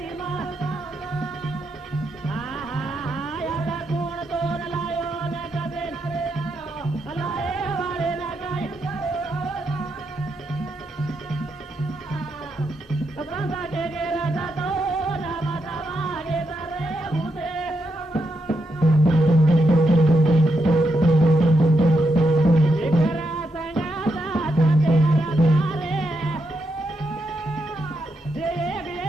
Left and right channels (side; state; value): both; normal; correlation 0.82